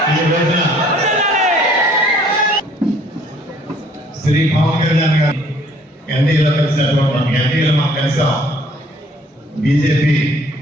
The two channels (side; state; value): both; normal; correlation 0.59